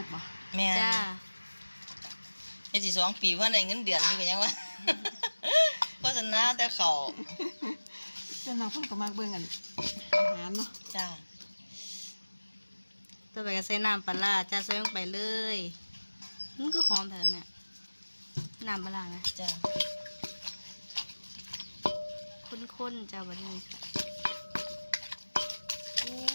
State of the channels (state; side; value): inverted; both; correlation -1.00